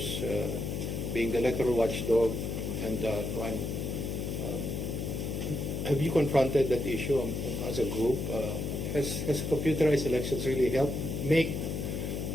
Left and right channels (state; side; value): noise; left; hum, 3 dB below the sound